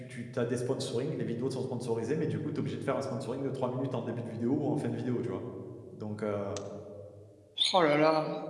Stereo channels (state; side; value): identical; both; correlation 1.00